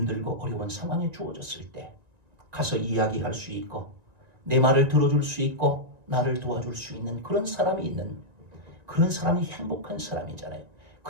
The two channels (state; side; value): late; left; 1.9 ms